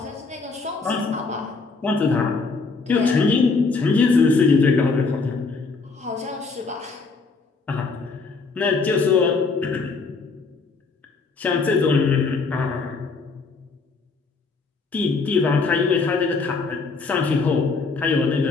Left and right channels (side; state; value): right; quieter; 4.3 dB